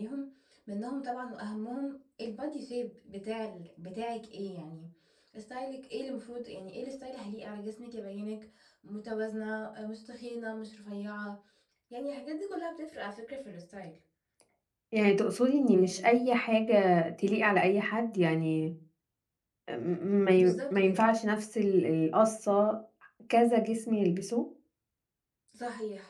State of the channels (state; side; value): identical; both; correlation 1.00